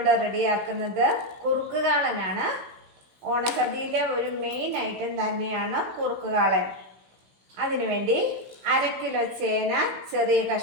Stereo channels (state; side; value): late; left; 15 ms